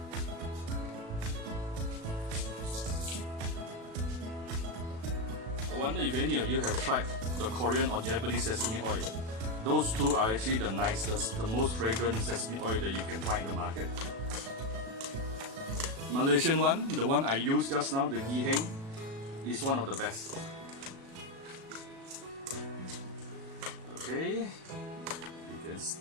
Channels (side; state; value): left; late; 36 ms